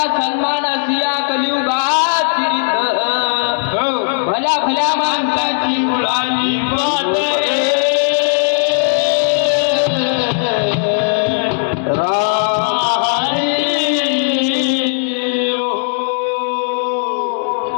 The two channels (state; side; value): silent; right; 62 dB below the other